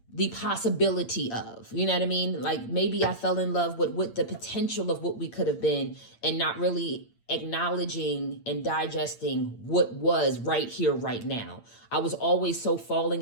the possibility of, you know what I mean? Like maybe I fell in love with the potential of what we could have been and not really acknowledging and digesting what was right here, right now. I was always so falling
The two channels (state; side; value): late; right; 8.8 ms